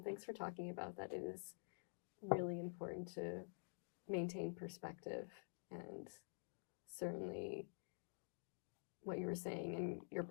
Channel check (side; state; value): right; silent; digital silence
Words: thanks for talking about that. It is really important to maintain perspective, and certainly what you were saying in your